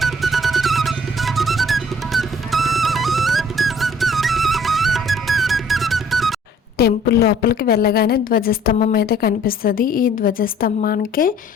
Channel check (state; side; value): normal; both; correlation 0.56